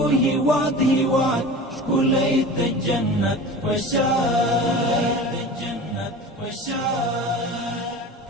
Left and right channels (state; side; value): normal; both; correlation 0.36